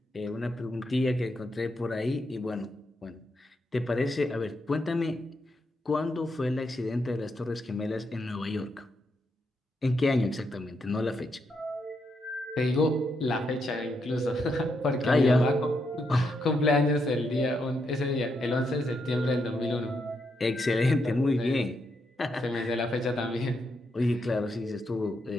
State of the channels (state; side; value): normal; both; correlation 0.81